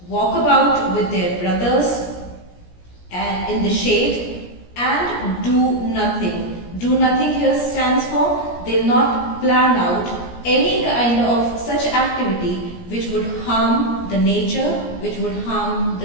walk about with their brothers and in the shade, and do nothing. Do nothing here stands for they'll not plan out any kind of such activity which would harm the nature, which would harm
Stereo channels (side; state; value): right; late; 17 ms